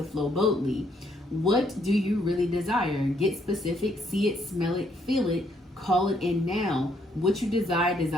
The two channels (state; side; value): normal; both; correlation 0.70